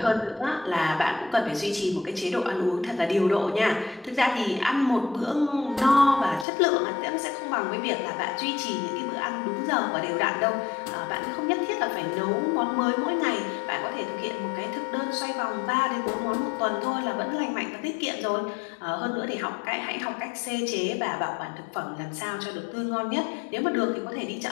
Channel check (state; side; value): drops out; right; at 6.5 s